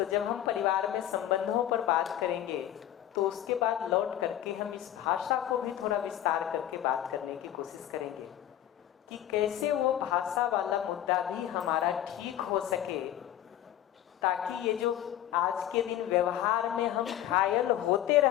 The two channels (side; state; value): right; quieter; 12.1 dB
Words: जब हम परिवार में संबंधों पर बात करेंगे तो उसके बाद लौट करके हम इस भाषा को भी थोड़ा विस्तार करके बात करने की कोशिश करेंगे कि कैसे वो भाषा वाला मुद्दा भी हमारा ठीक हो सके, ताकि ये जो आज के दिन व्यवहार में हम घायल होते